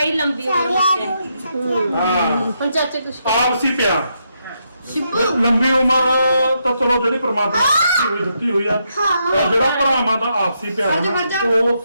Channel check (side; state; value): both; inverted; correlation -0.80